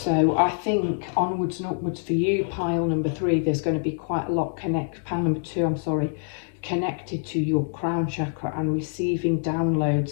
I think onwards and upwards for you, pile number 3, there's going to be quite a lot pile number 2, I'm sorry, connected to your crown chakra and receiving downloads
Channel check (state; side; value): silent; right; digital silence